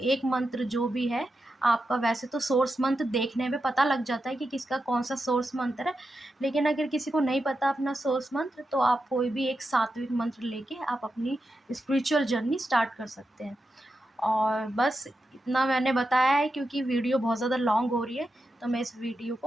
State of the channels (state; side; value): normal; both; correlation 0.88